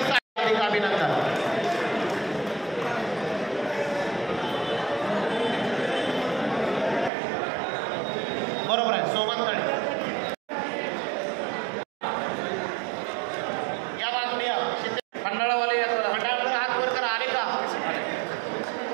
हार्दिक अभिनंदन. बरोबर आहे. सोमंतळे या बाजूने या. खंडाळावाले या सर. मंडळाकडे हात वर करा. आले का?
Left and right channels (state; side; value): drops out; left; at 7.1 s